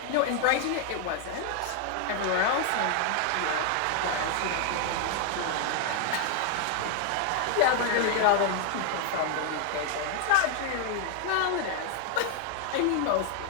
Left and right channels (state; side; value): different; both; correlation 0.00